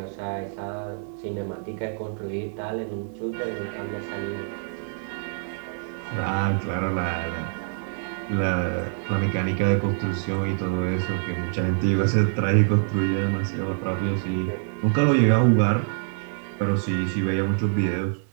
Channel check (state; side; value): silent; left; digital silence